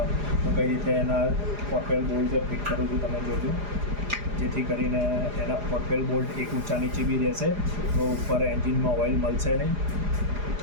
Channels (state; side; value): late; left; 4.9 ms